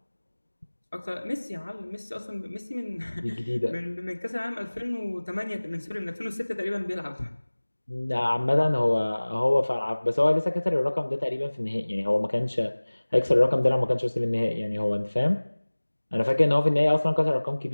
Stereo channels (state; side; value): inverted; both; correlation -1.00